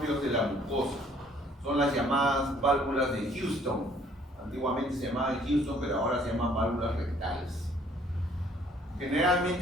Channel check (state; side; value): normal; both; correlation 0.60